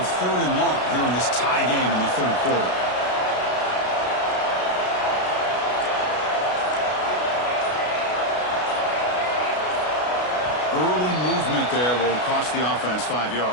third and long here in this tie game in the third quarter. Early movement there will cost the offense 5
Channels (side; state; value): right; late; 33 ms